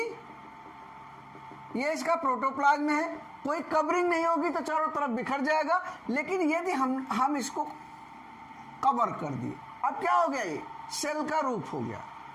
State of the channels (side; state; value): both; identical; correlation 1.00